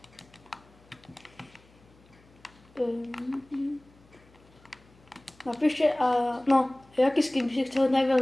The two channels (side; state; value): left; noise; hum, 28 dB below the sound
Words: Napíšte, jaký skin by si chcel